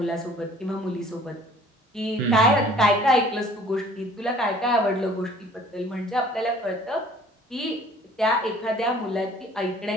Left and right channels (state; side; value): normal; both; correlation 0.52